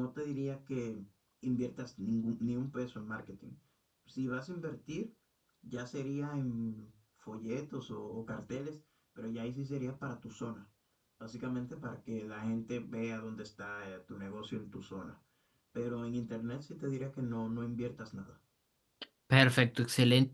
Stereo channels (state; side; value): identical; both; correlation 1.00